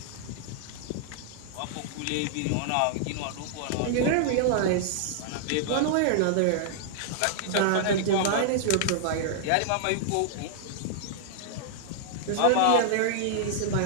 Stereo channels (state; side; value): different; both; correlation -0.01